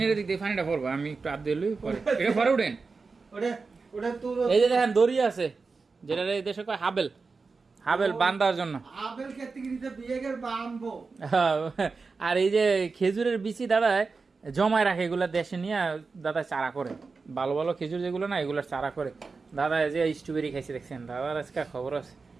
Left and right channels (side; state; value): left; quieter; 4.4 dB